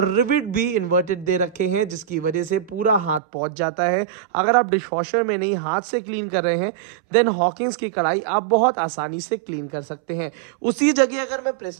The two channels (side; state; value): left; drops out; at 3.2 s